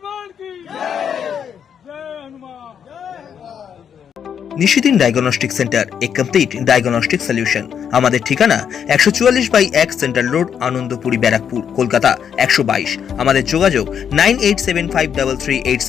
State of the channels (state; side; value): quieter; right; 8.0 dB